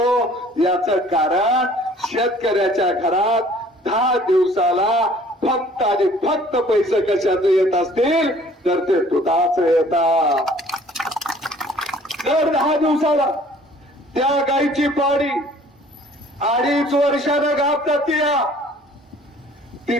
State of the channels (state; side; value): normal; both; correlation 0.54